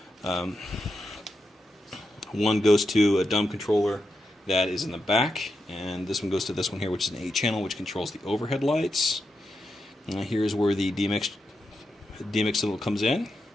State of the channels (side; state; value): both; normal; correlation 0.86